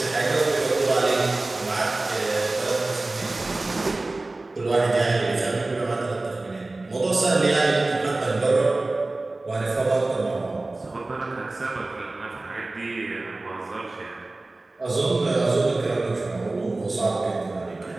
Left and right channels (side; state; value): left; quieter; 3.1 dB